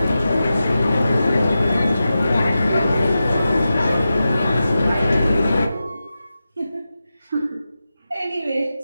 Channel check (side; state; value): both; inverted; correlation -0.92